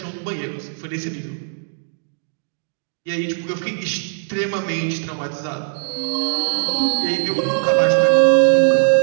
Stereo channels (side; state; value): left; silent; digital silence